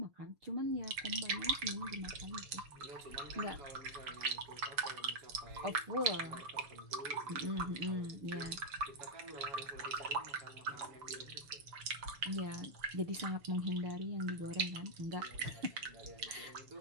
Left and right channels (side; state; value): left; late; 6.9 ms